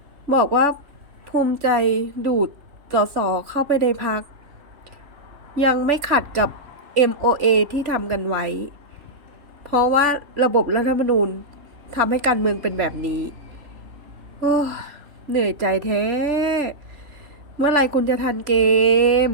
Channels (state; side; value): late; left; 3.4 ms